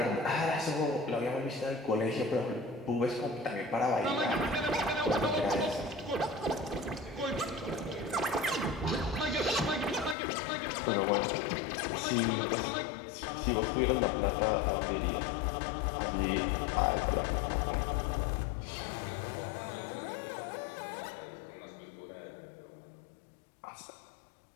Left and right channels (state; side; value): drops out; right; at 10.2 s